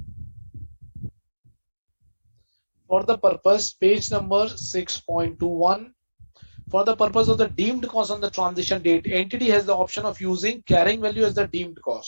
For the purpose, page number 6.21. For the purpose of the deemed cost on the transition date, entity has the option of using carrying value as the deemed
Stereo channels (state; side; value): inverted; both; correlation -1.00